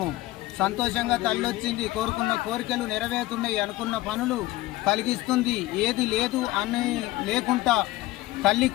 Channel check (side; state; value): right; quieter; 17.9 dB